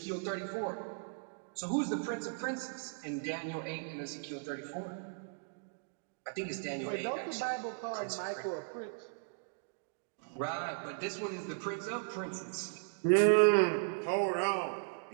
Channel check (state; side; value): silent; left; digital silence